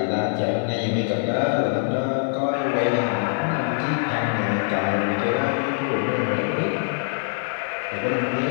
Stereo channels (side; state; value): right; silent; digital silence